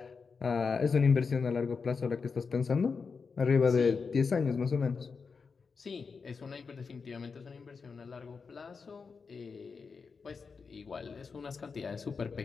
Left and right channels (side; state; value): right; quieter; 5.1 dB